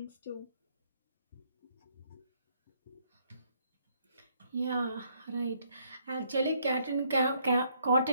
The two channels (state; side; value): inverted; both; correlation -0.69